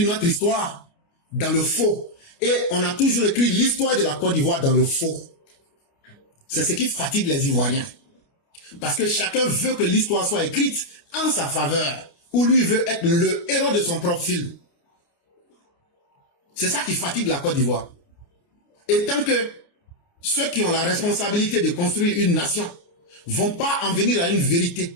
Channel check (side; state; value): right; late; 29 ms